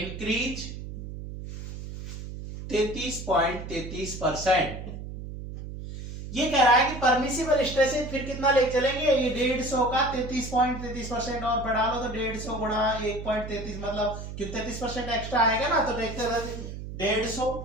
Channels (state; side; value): noise; right; hum, 9 dB below the sound